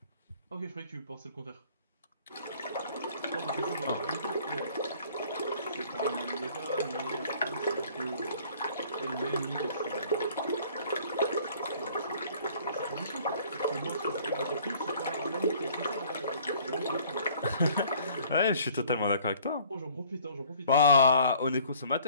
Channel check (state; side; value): inverted; both; correlation -0.55